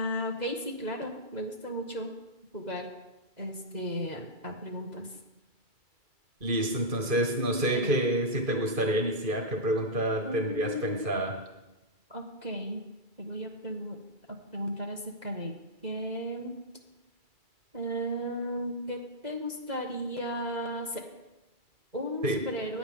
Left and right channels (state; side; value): late; left; 2.5 ms